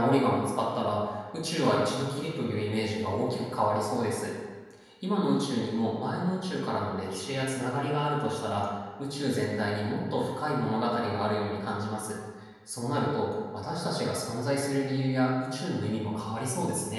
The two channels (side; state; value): both; identical; correlation 1.00